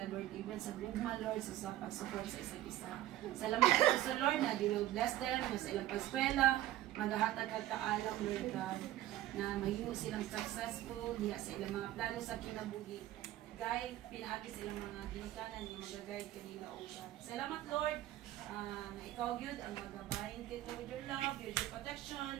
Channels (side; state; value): left; quieter; 14.3 dB